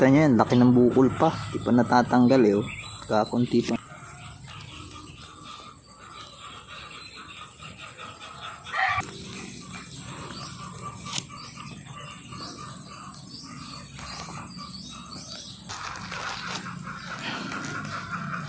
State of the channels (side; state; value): both; identical; correlation 1.00